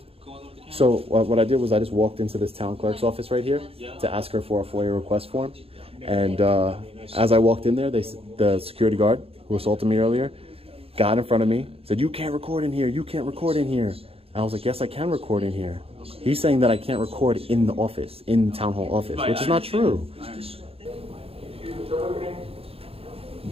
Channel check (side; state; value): left; late; 0.28 ms